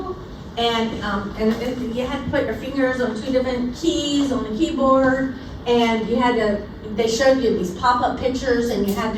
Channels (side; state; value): both; identical; correlation 1.00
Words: and you had to put your fingers on 2 different keys on the keyboard, and they showed you these pop-up pictures, and you had